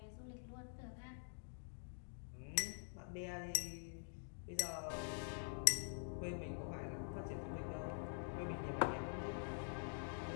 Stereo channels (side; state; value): right; silent; digital silence